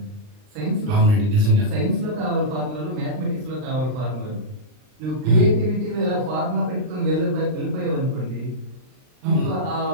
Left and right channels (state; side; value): late; left; 39 ms